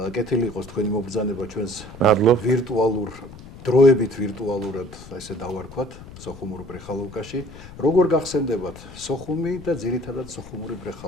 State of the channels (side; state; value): left; noise; rumble, 16 dB below the sound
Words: კეთილი იყოს თქვენი მობრძანება ჩვენს ვირტუალურ დროებით ვირტუალურად ესე დავარქვათ სოხუმურ ბრეხალოვკაში. როგორ გახსენდებათ სოხუმი და ძირითადად სოხუმური